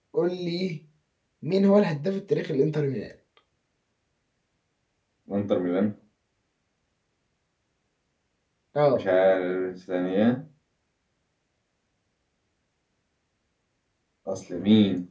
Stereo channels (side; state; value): both; identical; correlation 1.00